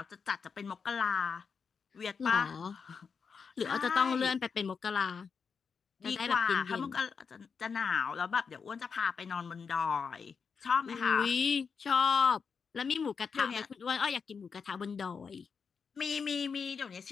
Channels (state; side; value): quieter; right; 5.8 dB